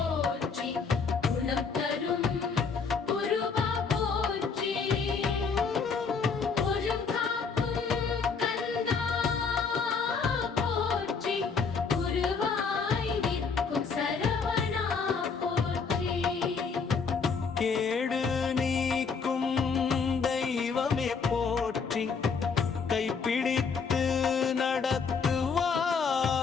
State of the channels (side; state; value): right; quieter; 5.3 dB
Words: கேடு நீக்கும் தெய்வமே போற்றி, கைப்பிடித்து நடத்துவா